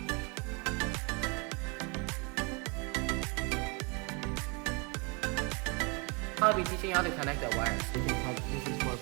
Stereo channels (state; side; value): quieter; left; 31.6 dB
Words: I'll be teaching you how to connect the wires. This is for